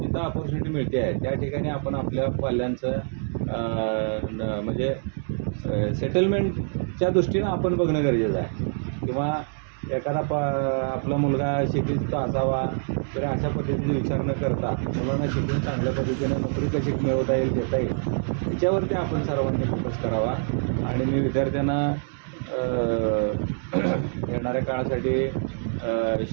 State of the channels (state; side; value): silent; left; digital silence